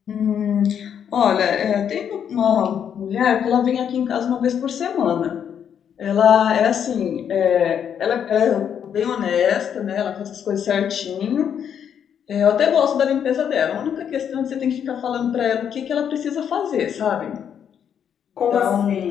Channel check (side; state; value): right; quieter; 8.4 dB